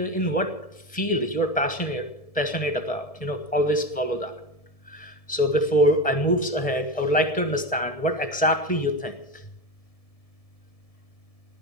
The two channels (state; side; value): late; right; 1.7 ms